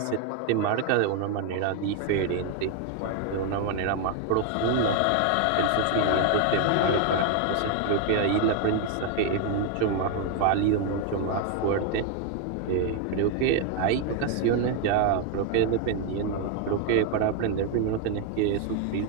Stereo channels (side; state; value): both; different; correlation 0.01